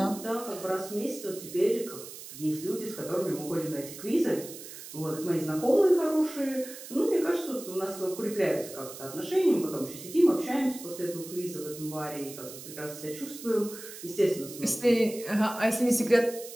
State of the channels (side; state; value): right; noise; hiss, 13 dB below the sound